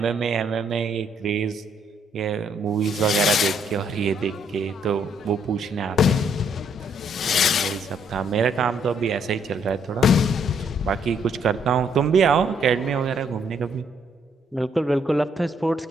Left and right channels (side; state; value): both; normal; correlation 0.70